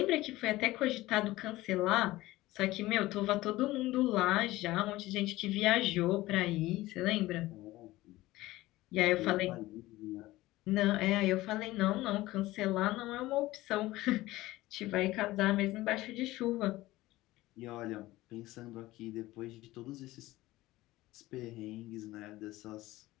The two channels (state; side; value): quieter; right; 17.8 dB